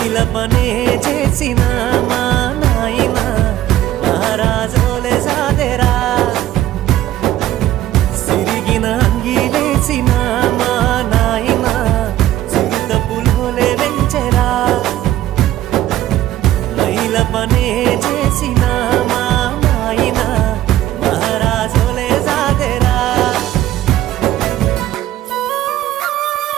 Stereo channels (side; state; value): left; quieter; 13.6 dB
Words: పనే చేసిన మా నాయన మహారాజోలే సాదెరా సిరిగిన అంగీలేసిన మా నాయన చిరుత పులోలే వెంచెరా మైల పనే చేసిన మా నాయన మహారాజోలే సాదెరా